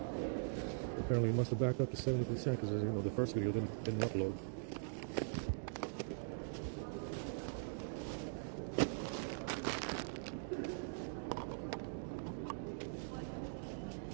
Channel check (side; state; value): left; silent; digital silence